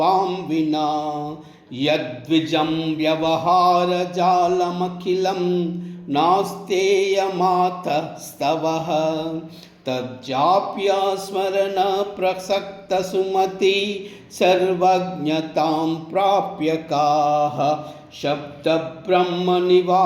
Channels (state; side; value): identical; both; correlation 1.00